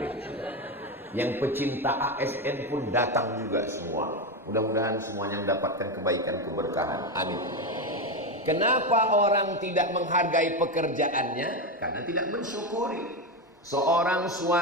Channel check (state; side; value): normal; both; correlation 0.13